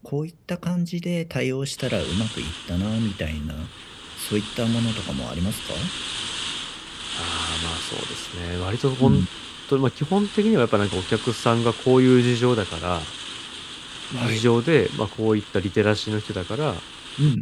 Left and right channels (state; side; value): identical; both; correlation 1.00